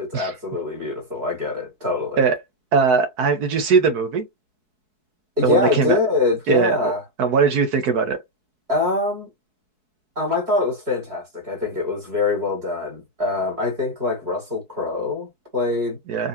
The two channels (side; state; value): left; late; 4.6 ms